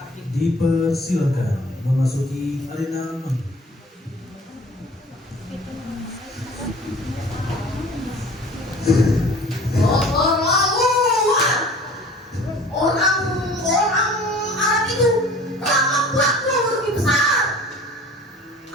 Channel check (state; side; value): normal; both; correlation 0.46